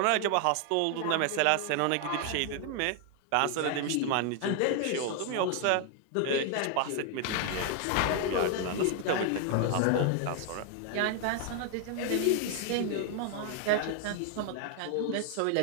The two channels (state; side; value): different; both; correlation 0.00